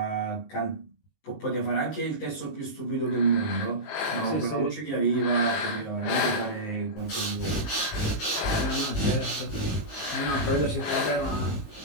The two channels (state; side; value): late; right; 19 ms